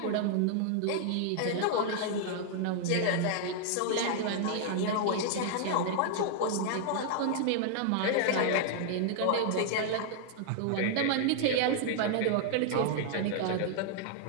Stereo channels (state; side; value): different; both; correlation -0.01